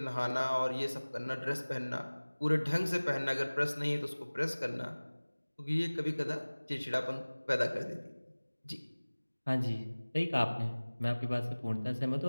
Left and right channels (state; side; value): inverted; both; correlation -1.00